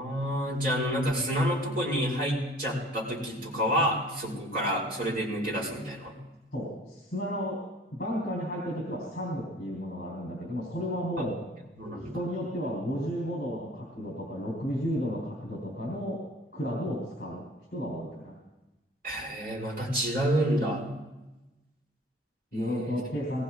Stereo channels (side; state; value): both; normal; correlation 0.50